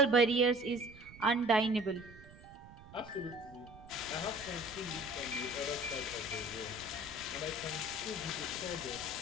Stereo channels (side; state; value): right; noise; rumble, 19 dB below the sound